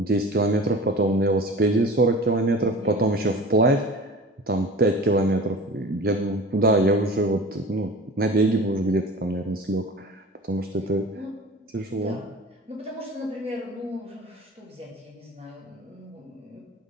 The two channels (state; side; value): normal; both; correlation 0.38